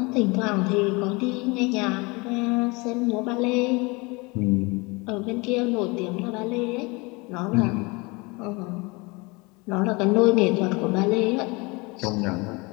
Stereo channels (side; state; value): right; quieter; 26.5 dB